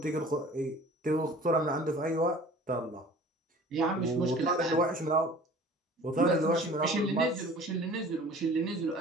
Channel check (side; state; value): both; normal; correlation 0.46